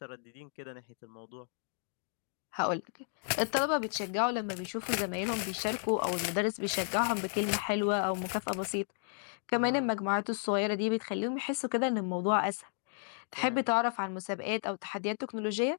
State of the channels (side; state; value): right; silent; digital silence